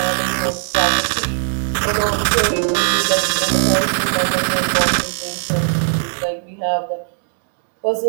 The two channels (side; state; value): left; silent; digital silence